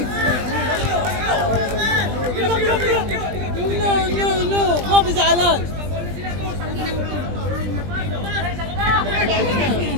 No. Kopi sa alan.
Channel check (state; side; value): late; left; 20 ms